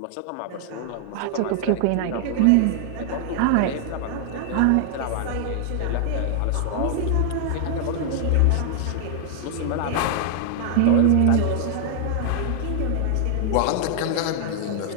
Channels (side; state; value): both; different; correlation 0.00